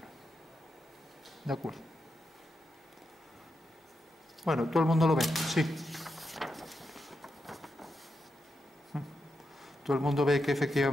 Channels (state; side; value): normal; both; correlation 0.86